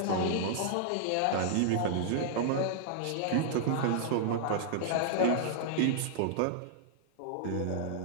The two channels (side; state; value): both; different; correlation -0.01